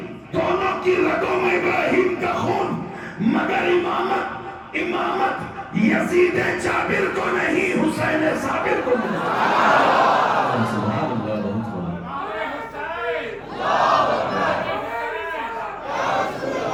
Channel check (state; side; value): identical; both; correlation 1.00